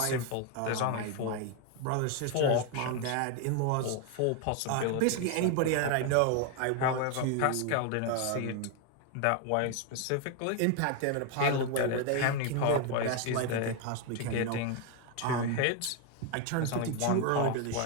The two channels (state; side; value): different; both; correlation 0.01